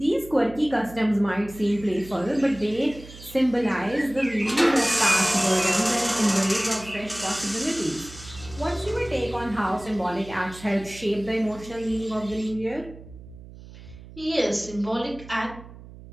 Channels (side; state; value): right; noise; hum, 17 dB below the sound